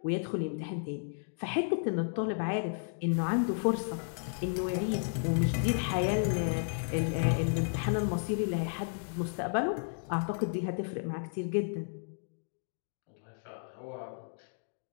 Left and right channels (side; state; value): right; silent; digital silence